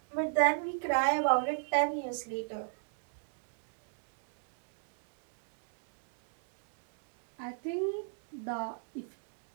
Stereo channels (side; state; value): left; silent; digital silence